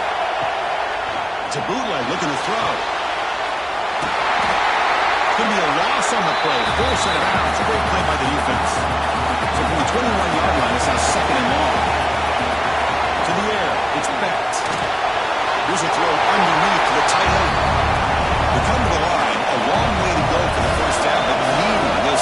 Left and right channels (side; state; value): both; identical; correlation 1.00